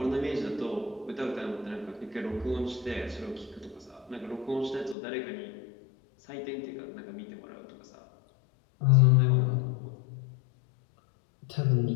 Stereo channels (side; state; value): right; drops out; at 5.0 s